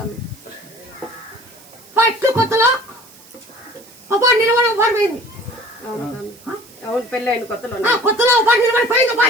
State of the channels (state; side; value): noise; right; hiss, 24 dB below the sound